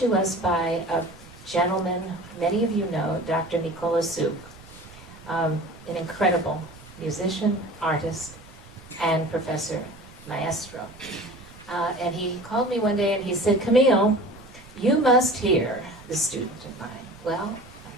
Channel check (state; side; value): noise; right; rumble, 21 dB below the sound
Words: us by a gentleman many of you know, Dr. Nicola Suk, an incredible musician, artist, and professor, maestro. And he called me one day and he said, Camille, you must hear the student of mine. Well,